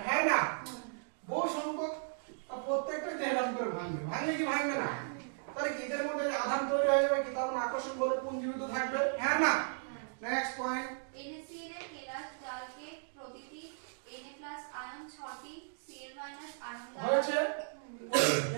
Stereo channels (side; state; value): left; silent; digital silence